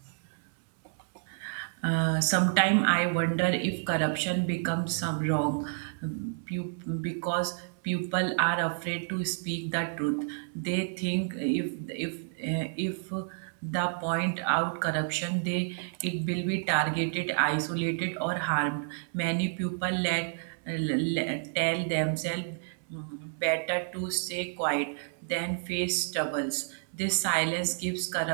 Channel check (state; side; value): silent; left; 58 dB below the other